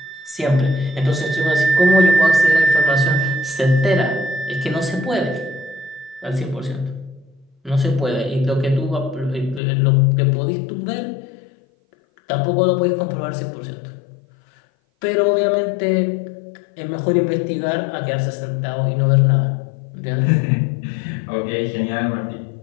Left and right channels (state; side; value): drops out; right; at 9.6 s